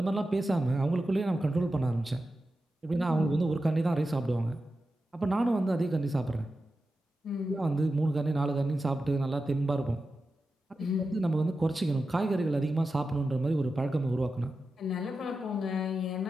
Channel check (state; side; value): normal; both; correlation 0.91